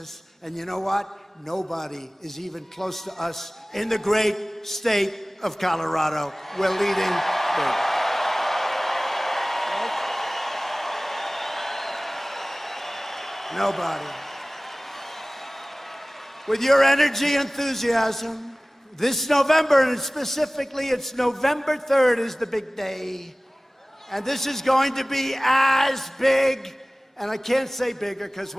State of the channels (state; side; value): normal; both; correlation 0.98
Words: And you know what? Nobody is even close to us in the great state of Colorado. We're leading big. Nobody. With your energy, enthusiasm, this November, and specifically it's November 3rd is the big day. And this is going to be as big, and I can't say bigger because